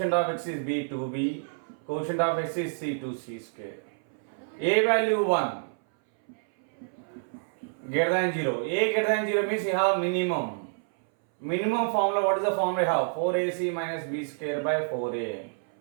of x is b, 2b, quotient of x is c, 2c square. A value 1. Greater than 0. A greater than 0 means you have minimum. Minimum formula, what is the formula you have? 4ac minus b square by 4a.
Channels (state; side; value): silent; left; 59 dB below the other